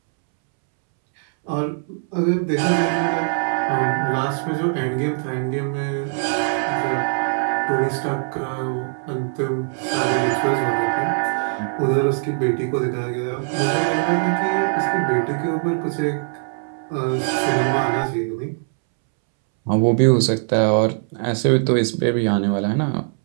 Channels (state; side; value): silent; left; 65 dB below the other